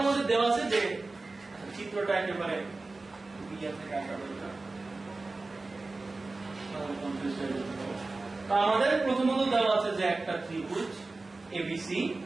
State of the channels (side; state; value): left; quieter; 3.4 dB